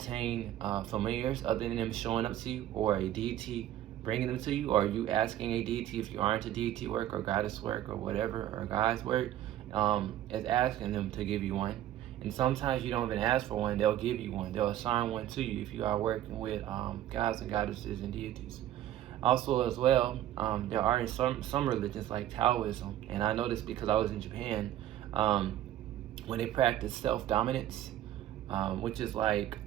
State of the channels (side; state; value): left; quieter; 12.5 dB